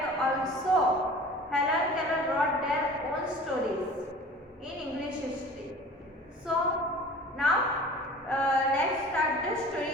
also Helen Keller wrote their own stories in English history. So now let's start the story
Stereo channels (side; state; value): both; normal; correlation 0.43